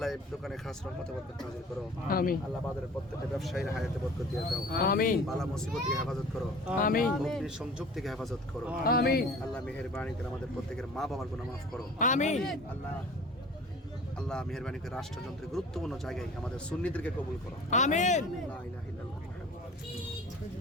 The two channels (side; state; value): both; normal; correlation 0.44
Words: এই দোকানে খাস রহমতে বরকত নাযিল করো। আমিন। আল্লাহ বাজারের প্রত্যেকটা ব্যবসায়ীর হায়াতে বরকত দিয়ে দাও। আমিন। বালা মুসিবত থেকে হেফাজত করো। আমিন। অগ্নি সংযোগ থেকে হেফাজত করো। আমিন। আল্লাহ মেহেরবানি করে আমাদের প্রত্যেকের মা বাবার গুনাহ মাফ করো। আমিন। আল্লাহ মেহেরবানি করে রাষ্ট্রযন্ত্রের গুরুত্বপূর্ণ জায়গায় আমাদের সুন্নিদেরকে কবুল করো। আমিন। লা ইলাহা ইল্লাল্লাহ।